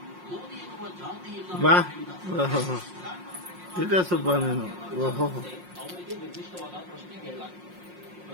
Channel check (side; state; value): left; late; 5.6 ms